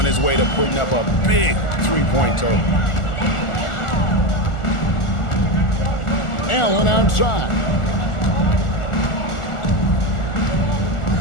his way to putting up a big three-point total. Allen outside.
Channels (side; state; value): right; late; 1.4 ms